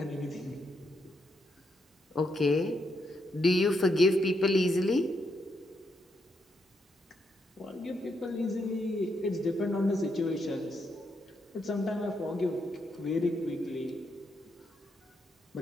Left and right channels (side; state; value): both; normal; correlation 0.79